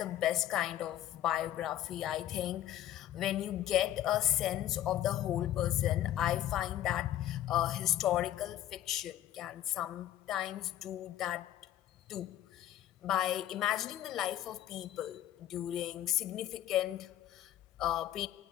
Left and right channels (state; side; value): quieter; right; 12.5 dB